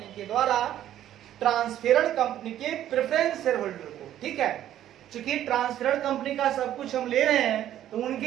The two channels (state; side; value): quieter; left; 11.8 dB